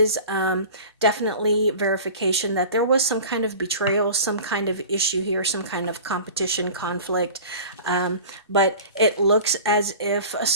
definitely verification that there was some kind of betrayal, some kind of issue here, some kind of competition, conflict. But it looks as if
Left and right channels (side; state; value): both; inverted; correlation -0.40